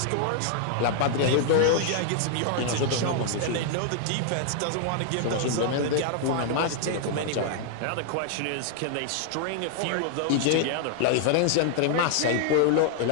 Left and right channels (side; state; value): both; different; correlation 0.00